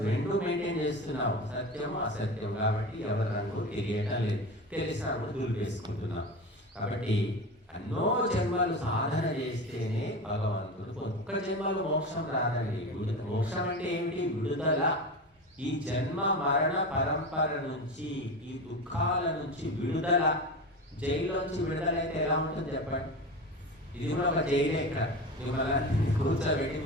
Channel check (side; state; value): both; normal; correlation 0.26